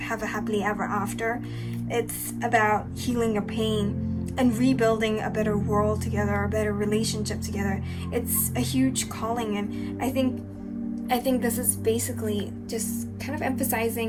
a happily ever after. It's about healing your pain and rebuilding a better world together, a better relationship together. It's a huge calling, and I think this is basically just kind of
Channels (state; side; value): identical; both; correlation 1.00